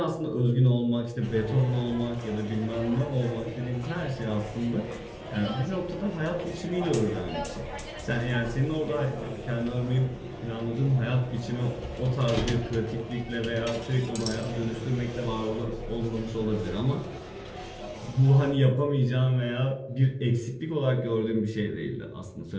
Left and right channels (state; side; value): identical; both; correlation 1.00